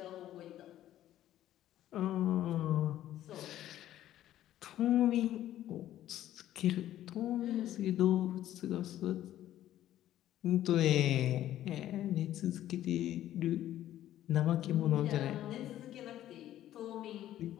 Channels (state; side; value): quieter; right; 12.8 dB